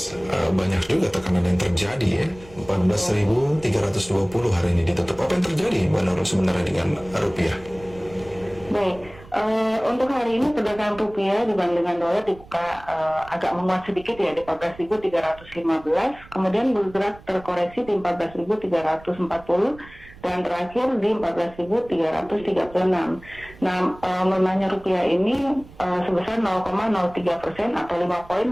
banyak juga tekanan yang terjadi ya. 14.320 hari ini ditutup. Apa yang terjadi Mbak Nurul sebenarnya dengan rupiah? Baik, untuk hari ini perdagangan rupiah dibandingkan dolar dibuka agak menguat sedikit ya di 14.315, kemudian bergerak terkoreksi di 14.340, dan terakhir di 14.336. Nah, melemahnya rupiah ini sebesar 0,03% atau 5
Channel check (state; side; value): noise; right; rumble, 21 dB below the sound